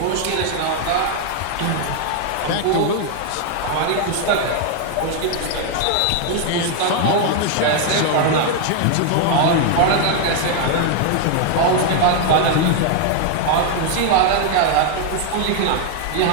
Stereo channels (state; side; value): different; both; correlation 0.00